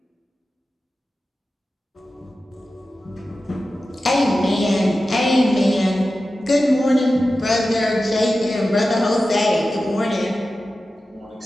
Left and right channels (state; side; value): normal; both; correlation 0.93